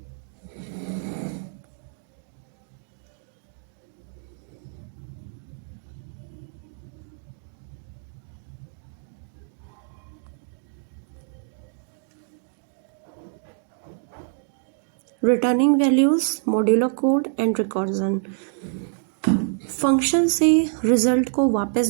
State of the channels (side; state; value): left; silent; 60 dB below the other